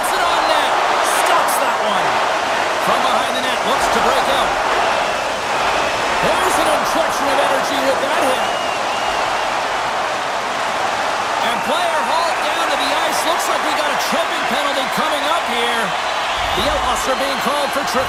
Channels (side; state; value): both; identical; correlation 1.00